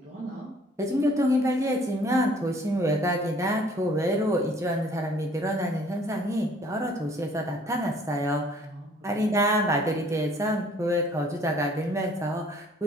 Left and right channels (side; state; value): both; normal; correlation 0.57